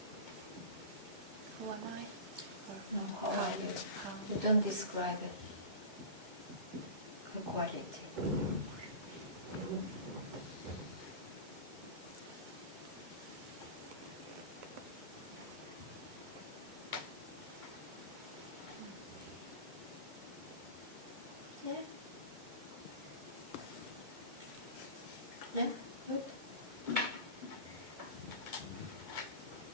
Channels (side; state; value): left; late; 2.2 ms